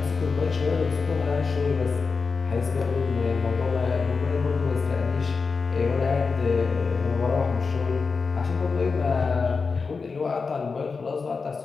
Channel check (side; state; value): right; quieter; 4.7 dB